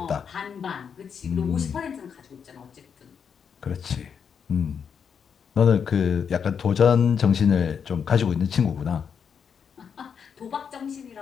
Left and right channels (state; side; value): quieter; right; 7.0 dB